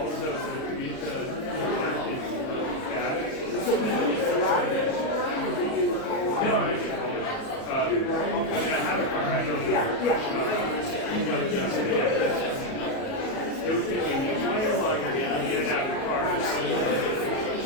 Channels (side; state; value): right; late; 37 ms